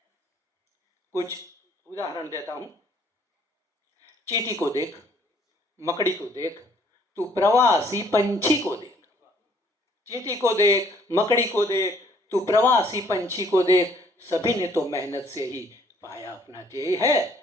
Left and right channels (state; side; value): normal; both; correlation 0.62